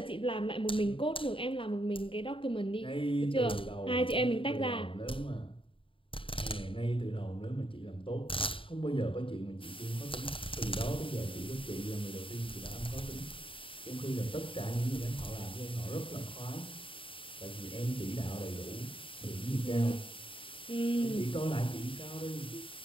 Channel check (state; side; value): late; right; 0.25 ms